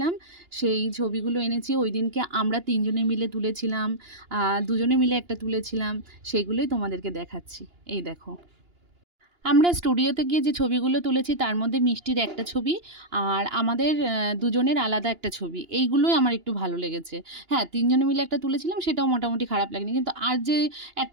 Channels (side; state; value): left; late; 2.9 ms